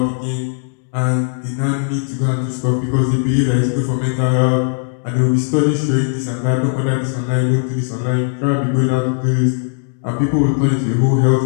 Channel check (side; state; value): right; silent; digital silence